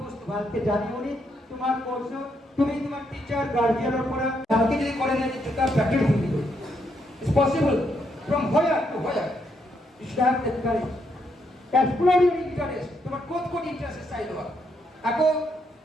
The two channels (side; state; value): both; normal; correlation 0.77